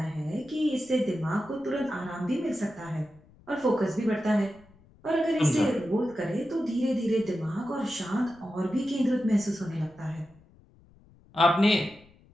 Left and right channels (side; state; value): left; noise; rumble, 27 dB below the sound